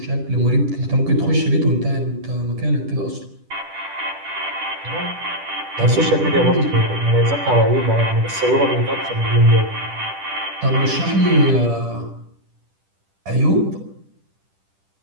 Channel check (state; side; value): late; left; 10 ms